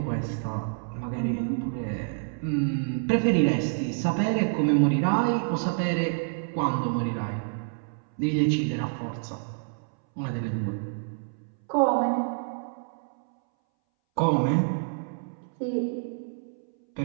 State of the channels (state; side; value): silent; left; 60 dB below the other